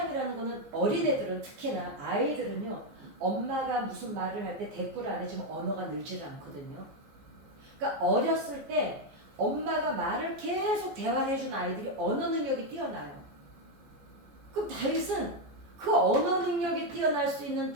거는 어린애들은 특히나 아이들은요 엄마가 무슨 말을 할 때 대꾸를 안 해주면 언어가 늘지를 않거든요. 그러니까 어렸을 때 엄마가 말을 계속 대화를 해준 아이들이 언어 능력이 뛰어나요. 그럼 다윗은 그 언어 능력이 뛰어날 수 있는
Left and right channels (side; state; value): left; late; 15 ms